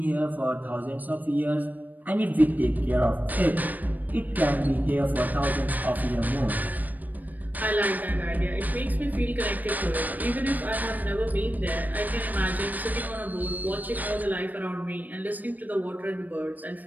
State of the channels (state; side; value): late; left; 0.083 ms